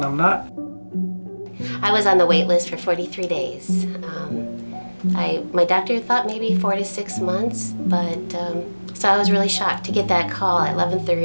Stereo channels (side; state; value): both; inverted; correlation -1.00